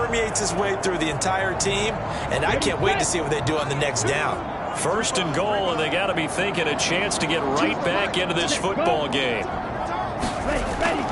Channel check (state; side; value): identical; both; correlation 1.00